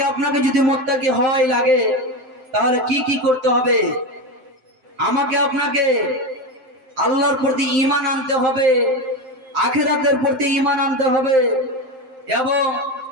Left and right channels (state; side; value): late; left; 7.7 ms